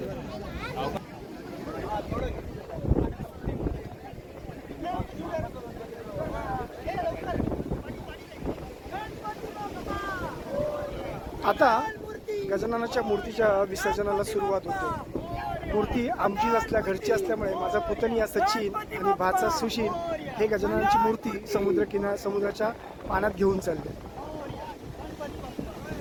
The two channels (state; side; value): identical; both; correlation 1.00